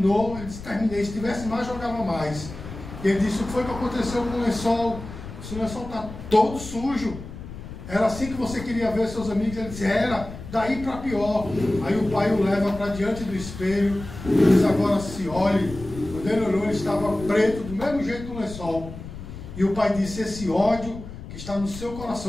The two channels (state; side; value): noise; left; rumble, 12 dB below the sound